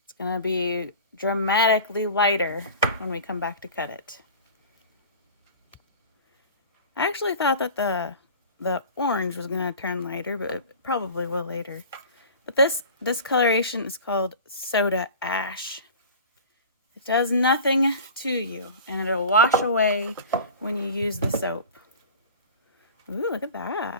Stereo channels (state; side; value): inverted; both; correlation -0.38